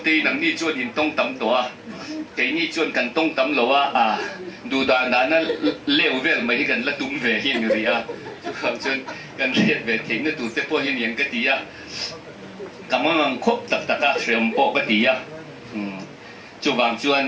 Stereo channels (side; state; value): both; identical; correlation 1.00